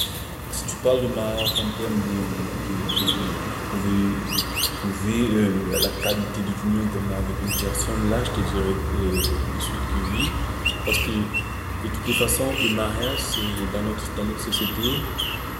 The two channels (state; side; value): identical; both; correlation 1.00